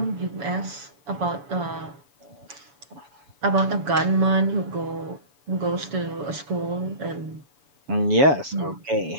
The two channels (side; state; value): left; late; 7.1 ms